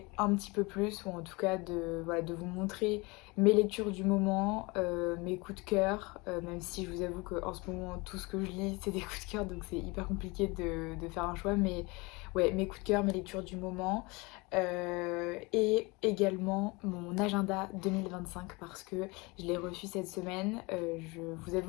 un petit peu plus, ou en tout cas voilà, de vous montrer mes lectures du moment, mes coups de cœur, même si je vous avoue qu'en ce moment tout ce que je lis c'est des coups de cœur, donc c'est hyper compliqué de faire un choix, mais ouais, mes coups de cœur, mes lectures du moment, et également mon agenda 2025 parce que je l'ai reçu cette semaine. Je vous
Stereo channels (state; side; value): quieter; right; 25.9 dB